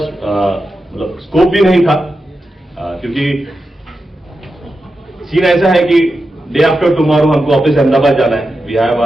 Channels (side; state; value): both; normal; correlation 0.90